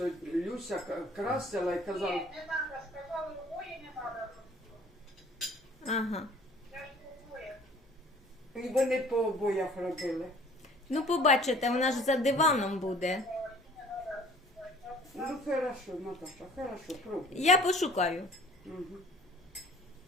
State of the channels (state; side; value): normal; both; correlation 0.51